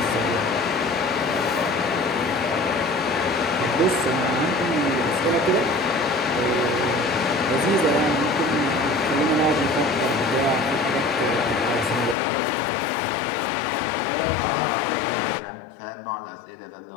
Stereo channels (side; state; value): right; drops out; at 12.2 s